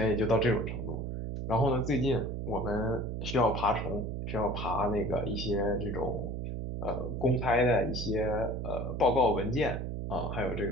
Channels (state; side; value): noise; right; hum, 4 dB below the sound